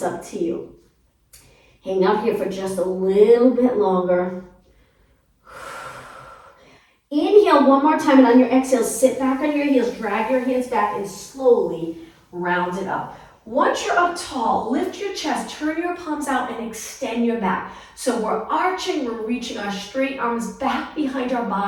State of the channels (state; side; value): identical; both; correlation 1.00